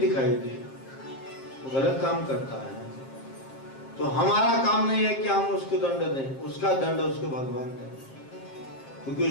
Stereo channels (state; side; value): late; right; 7.5 ms